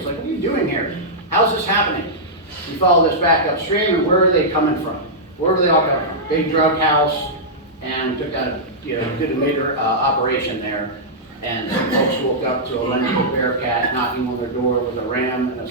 like, what are you doing here? How's this happening? We follow this back upstream, and where are they coming from? Where were they all coming from? Big drug house, and took out, did a major operation there. And some folks woke up to a vengeful Bearcat knocking on their door with a ram and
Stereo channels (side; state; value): both; normal; correlation -0.10